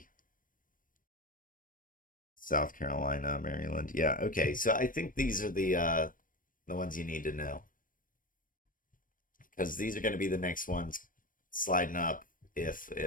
South Carolina, Maryland. Yeah, okay. So I think these are the ones you need to know because these are going to be the next ones sliding up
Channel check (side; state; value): right; late; 0.40 ms